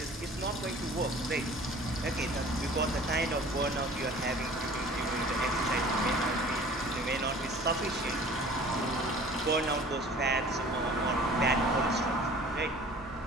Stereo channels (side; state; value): both; normal; correlation 0.47